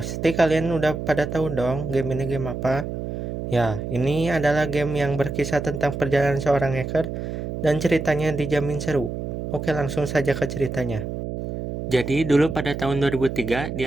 kalian udah pada tahu dong game ini game apa? Ya, ini adalah game yang berkisah tentang perjalanan seorang hacker dan ceritanya dijamin seru. Oke, langsung saja ke ceritanya. Jadi dulu pada tahun 2003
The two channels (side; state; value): right; noise; hum, 5 dB below the sound